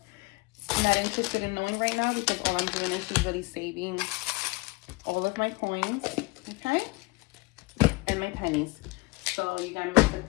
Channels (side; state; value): right; quieter; 24.7 dB